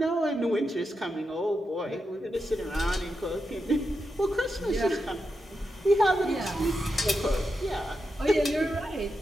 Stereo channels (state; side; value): normal; both; correlation 0.87